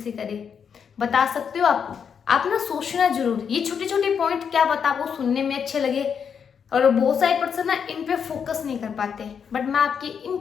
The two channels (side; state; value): right; quieter; 7.0 dB